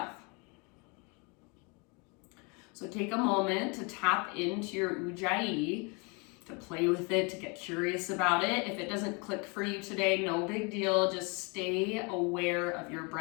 So take a moment to tap into your Ujjayi, to play with it, to get curious about it. If it doesn't click for you today, no big deal. Just stay aware of your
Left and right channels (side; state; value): right; quieter; 31.4 dB